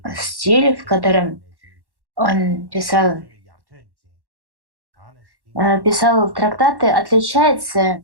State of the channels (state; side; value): late; left; 1.1 ms